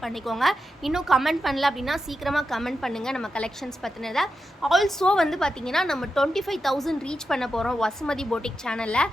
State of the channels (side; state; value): both; normal; correlation 0.89